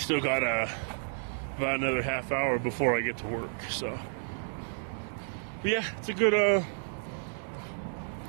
got about another half hour before I get to work. So, but yeah, it's a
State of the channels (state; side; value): silent; left; 57 dB below the other